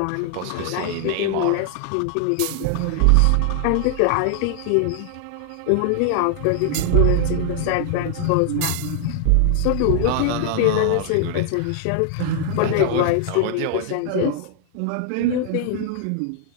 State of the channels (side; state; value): both; different; correlation -0.01